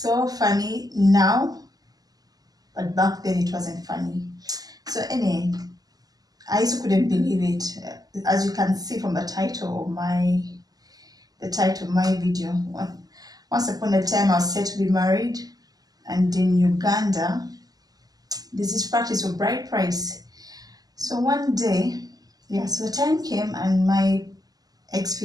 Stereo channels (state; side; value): late; left; 0.18 ms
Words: so funny now, but back then it wasn't funny. So I also couldn't believe it. As you can see from the title of my video. Once upon a time I was set to be married, and in Uganda there's this practice of bride price. So one day, so the time came and my